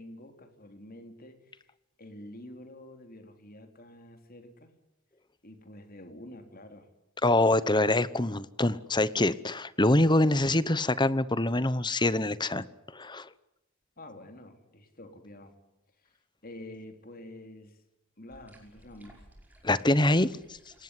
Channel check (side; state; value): both; normal; correlation 0.60